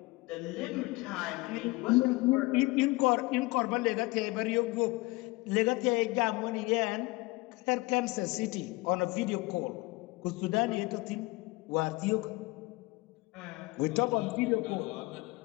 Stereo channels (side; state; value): right; quieter; 22.8 dB